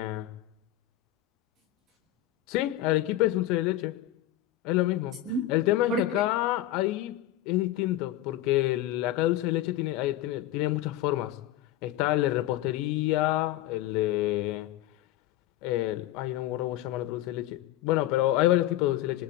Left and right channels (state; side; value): quieter; right; 13.8 dB